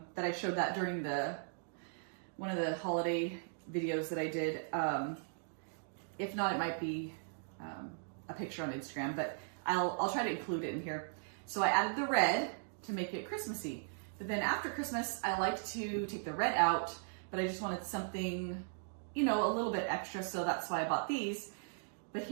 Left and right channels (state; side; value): silent; left; digital silence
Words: that I showed that during one of the holiday videos that I did. If not, it might be a picture on Instagram, but I'll try to include it in here. So I added the red to make it Christmassy. But then after Christmas, I like to take the red out, but I just wanted something, you know, a little bit extra, so that's why I bought these. But